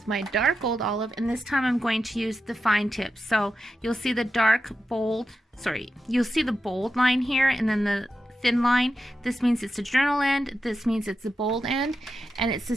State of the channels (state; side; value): normal; both; correlation 0.89